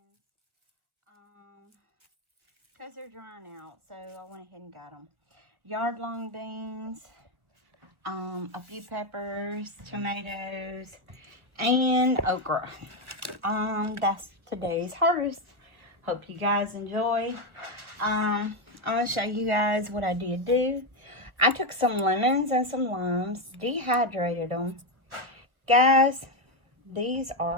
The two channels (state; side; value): late; left; 1.4 ms